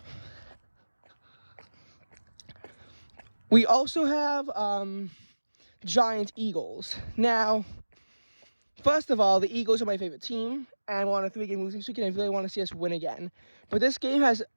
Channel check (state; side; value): inverted; both; correlation -1.00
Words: We also have Giants-Eagles. Now, first of all, the Eagles are my favorite team, and we're on a 3-game losing streak, and I really want to see us win again. But this game has